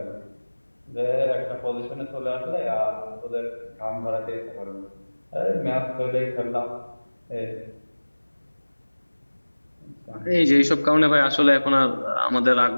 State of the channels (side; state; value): both; inverted; correlation -1.00